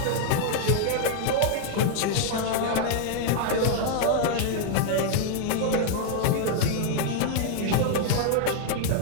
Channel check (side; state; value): both; different; correlation 0.00